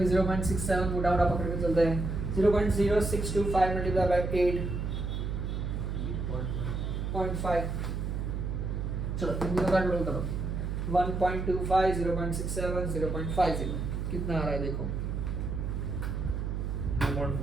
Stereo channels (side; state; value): right; noise; hum, 2 dB below the sound